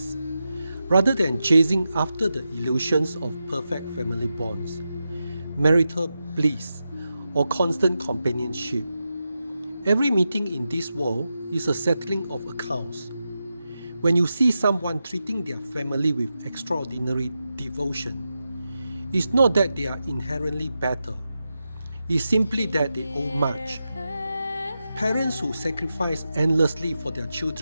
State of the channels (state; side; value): inverted; both; correlation -0.90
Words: rather than chasing after the illusions of perfect family bonds, marital bliss, or constant companionship. Every meeting in this world is a settling of accounts. When you see someone treating their family with extraordinary devotion, it's not that they are inherently better, it's simply that they owe much. Parents who sacrifice endlessly for their